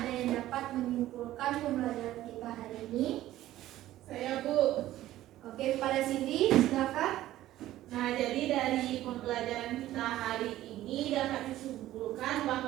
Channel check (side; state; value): left; quieter; 14.4 dB